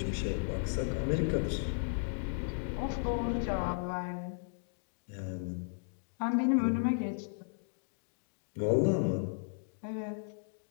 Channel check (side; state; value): right; silent; digital silence